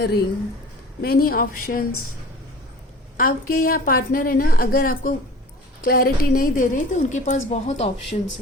ring, many options. आपके यहाँ पार्टनर है ना, अगर आपको क्लैरिटी नहीं दे रहे तो उनके पास बहुत ऑप्शंस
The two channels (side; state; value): both; normal; correlation 0.42